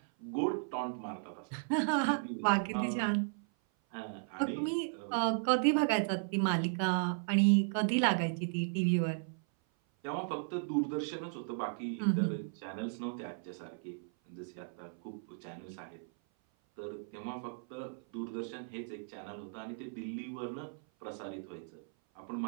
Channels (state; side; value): silent; left; 54 dB below the other